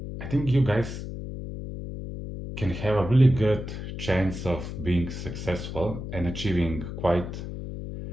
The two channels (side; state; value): left; noise; hum, 7 dB below the sound